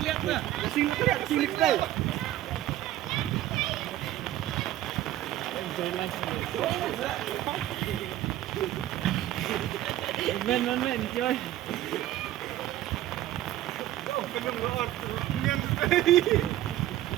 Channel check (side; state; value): left; quieter; 13.8 dB